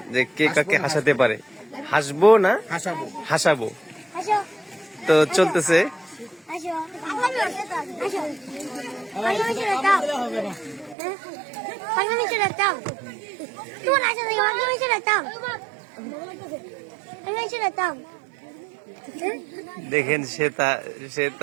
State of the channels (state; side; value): drops out; left; at 11.0 s